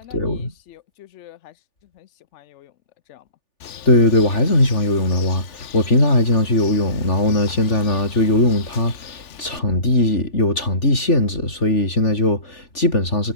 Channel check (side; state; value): right; late; 3.4 ms